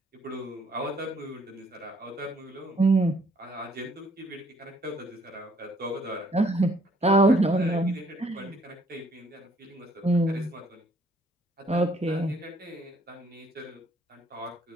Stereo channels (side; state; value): both; normal; correlation 0.64